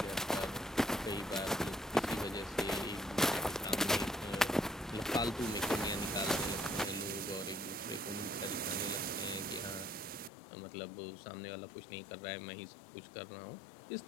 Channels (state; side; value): drops out; right; at 10.3 s